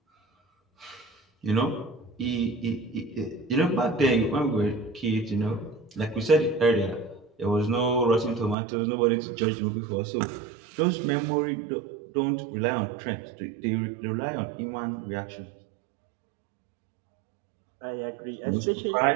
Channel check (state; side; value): drops out; left; at 8.6 s